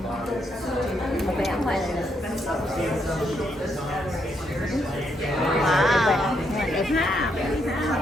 Một cái áo ngoài này. Wow, đẹp ha.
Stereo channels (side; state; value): both; normal; correlation 0.77